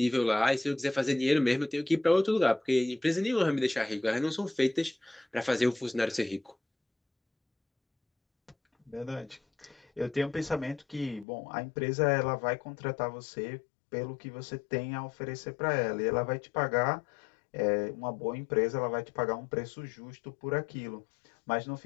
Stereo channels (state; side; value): drops out; right; at 11.2 s